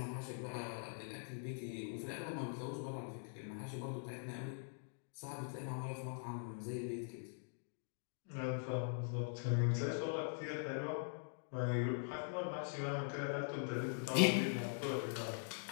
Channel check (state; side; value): silent; right; digital silence